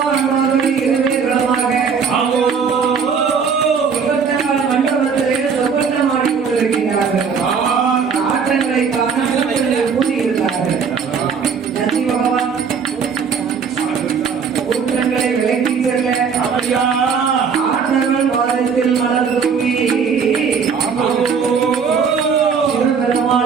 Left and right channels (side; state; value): left; quieter; 6.2 dB